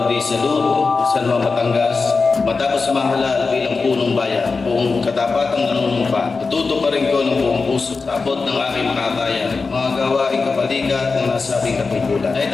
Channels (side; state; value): right; quieter; 4.3 dB